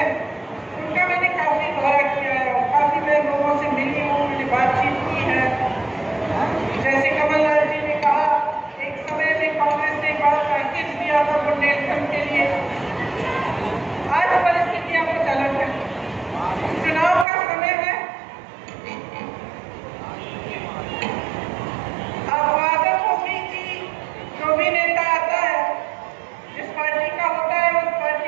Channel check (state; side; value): drops out; left; at 17.2 s